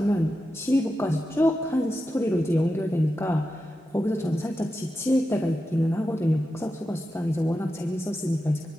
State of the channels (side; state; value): both; normal; correlation 0.90